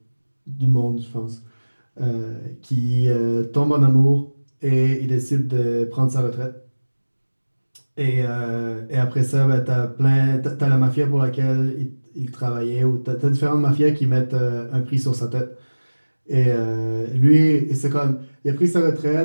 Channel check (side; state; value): both; inverted; correlation -1.00